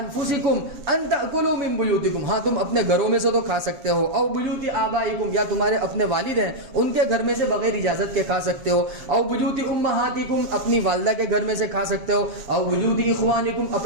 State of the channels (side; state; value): left; late; 7.5 ms